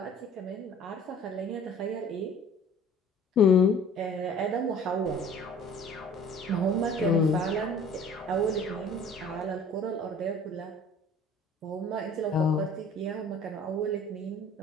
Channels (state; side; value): normal; both; correlation 0.49